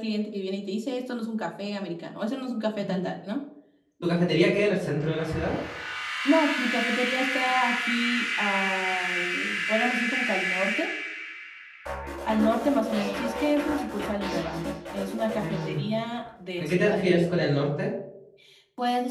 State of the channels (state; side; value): identical; both; correlation 1.00